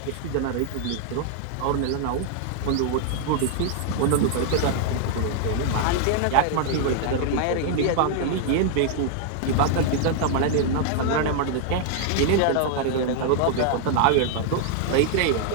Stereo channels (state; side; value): different; both; correlation 0.00